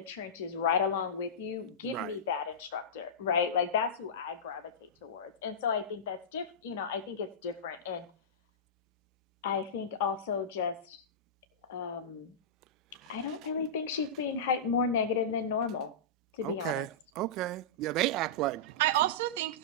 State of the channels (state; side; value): normal; both; correlation -0.17